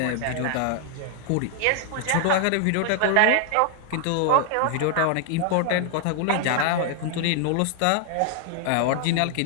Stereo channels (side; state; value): both; different; correlation 0.00